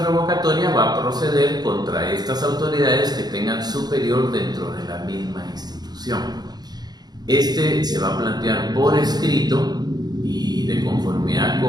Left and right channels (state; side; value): late; left; 0.20 ms